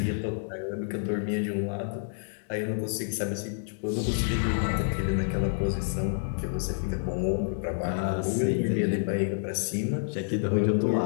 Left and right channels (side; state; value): right; silent; digital silence